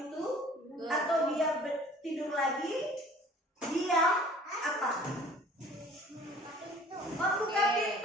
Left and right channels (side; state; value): both; normal; correlation 0.50